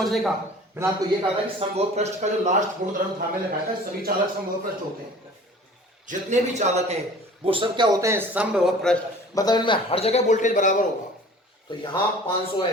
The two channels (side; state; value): both; normal; correlation 0.45